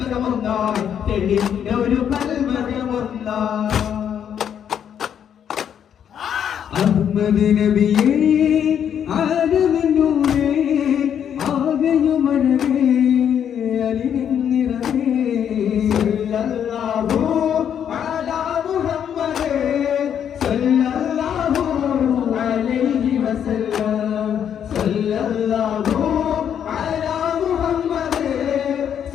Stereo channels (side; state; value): right; quieter; 8.8 dB